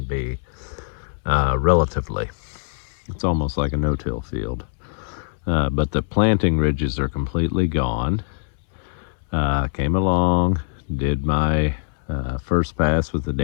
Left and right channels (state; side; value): silent; right; 59 dB below the other